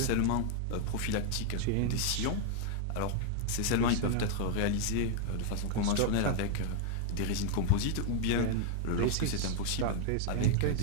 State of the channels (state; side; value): different; both; correlation -0.01